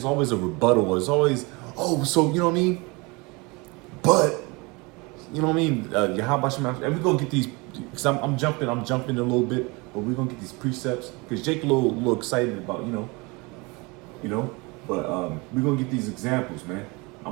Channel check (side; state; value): left; quieter; 26.7 dB